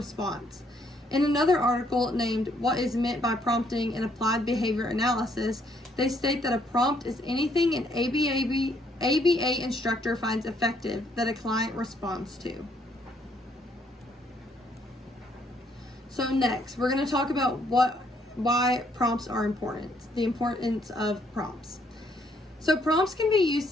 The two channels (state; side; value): normal; both; correlation 0.69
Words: In another article named What is Meant by Prompting in Applied Behavior Analysis, they state that a prompt is anything an ABA instructor finds effective that a client responds to. So next, we're going to talk about why prompts are important, the importance of prompts. So prompts can be used